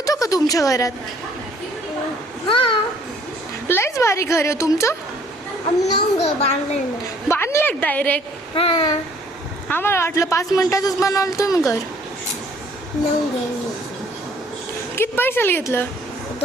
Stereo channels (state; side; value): normal; both; correlation 0.59